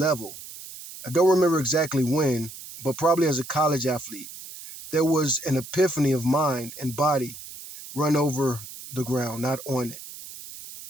I don't remember exactly when, but probably as a college athlete. There was an epiphany of mind and body. Run over the ground, not on it.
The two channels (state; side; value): noise; right; hiss, 14 dB below the sound